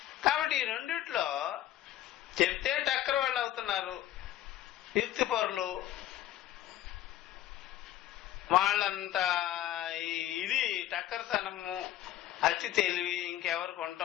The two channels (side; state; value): right; quieter; 13.4 dB